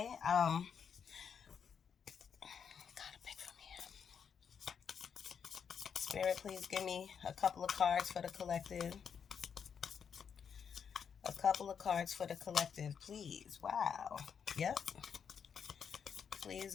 Gotta pick from here. Spirit, please give me a couple of cards for the collective. A couple of cards for the collective, please. Wow. Yep.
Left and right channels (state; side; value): quieter; right; 7.1 dB